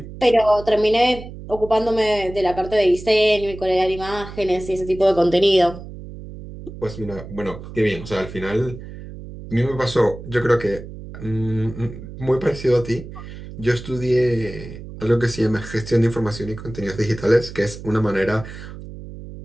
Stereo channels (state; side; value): noise; right; hum, 13 dB below the sound